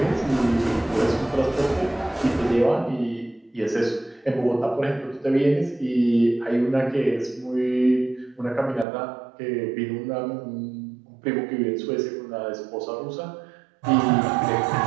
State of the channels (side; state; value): left; drops out; at 8.8 s